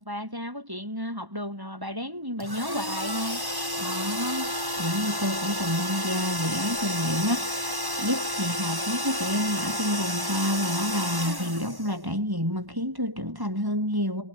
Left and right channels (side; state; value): left; late; 1.1 ms